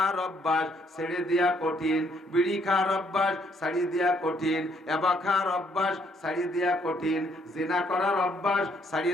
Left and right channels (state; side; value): normal; both; correlation 0.69